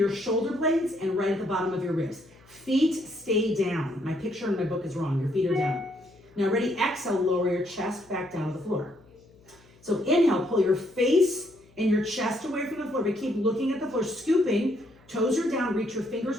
shoulder blades and right at the bottom of your ribs. Feet stay down. My picture in my book is wrong. Your feet are down. Now ready, exhale, lower your chest back down to the floor. So inhale, pull your face and your chest away from the floor, but keep looking at the floor, scooping, toes are down, reach your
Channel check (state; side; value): noise; left; hum, 28 dB below the sound